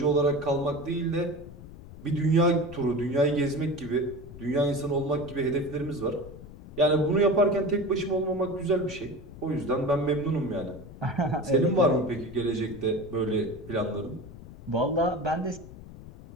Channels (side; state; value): left; noise; rumble, 16 dB below the sound